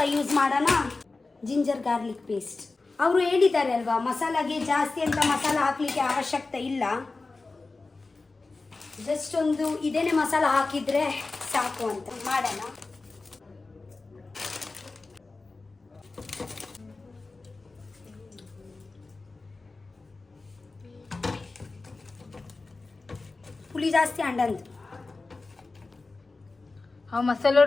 ಯೂಸ್ ಮಾಡೋಣ, ಜಿಂಜರ್ ಗಾರ್ಲಿಕ್ ಪೇಸ್ಟ್. ಅವರು ಹೇಳಿದ್ದಾರೆ ಅಲ್ವಾ ಮಸಾಲಾಗೆ ಜಾಸ್ತಿ ಅಂತ ಮಸಾಲ ಹಾಕಲಿಕ್ಕೆ ಅವಶ್ಯಕತೆ ಇಲ್ಲ, ಜಸ್ಟ್ ಒಂದು ಇದೇನೆ ಮಸಾಲ ಹಾಕಿದರೆ ಸಾಕು ಅಂತ ಮಾಡೋಣ. పులి జాస్తి అండందు ಆ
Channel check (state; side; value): quieter; right; 3.6 dB